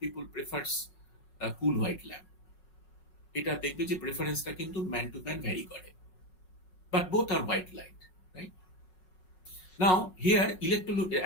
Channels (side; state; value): right; late; 5.5 ms